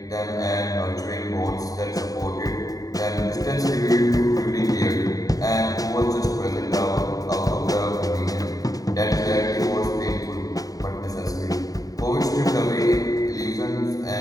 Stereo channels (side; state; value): right; late; 0.18 ms